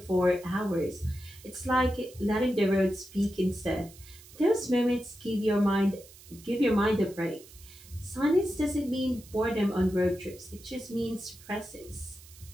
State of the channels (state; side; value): noise; right; hiss, 21 dB below the sound